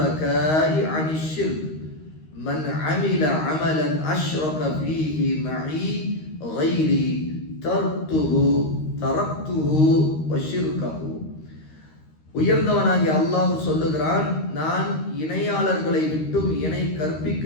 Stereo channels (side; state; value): right; late; 13 ms